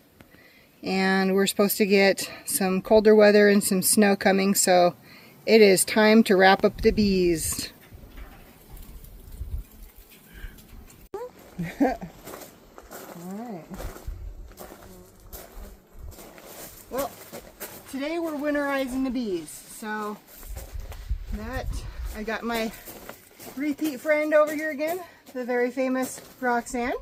and we're supposed to get some colder weather and some snow coming, so it is time to wrap up the bees. Alright. Well, today we're winterizing the bees, so that I got my repeat friend over here again, the very famous Roxanne.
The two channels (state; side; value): identical; both; correlation 1.00